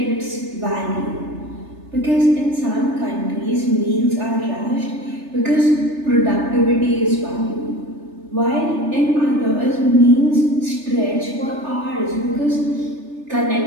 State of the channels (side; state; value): left; late; 3.3 ms